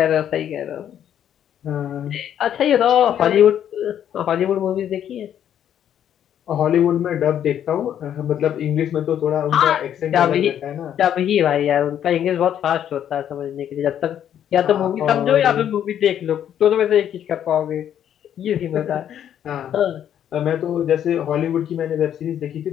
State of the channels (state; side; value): quieter; right; 10.0 dB